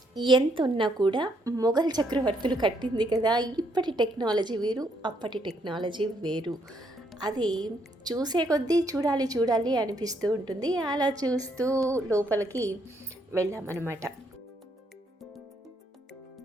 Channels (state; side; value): normal; both; correlation 0.72